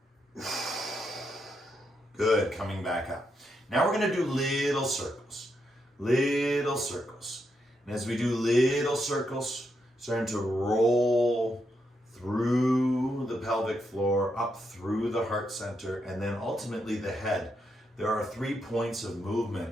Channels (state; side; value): normal; both; correlation 0.81